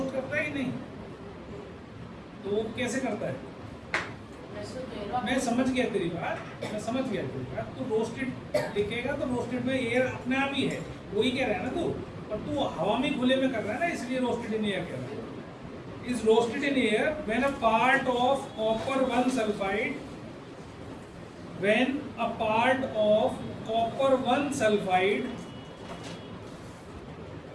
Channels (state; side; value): identical; both; correlation 1.00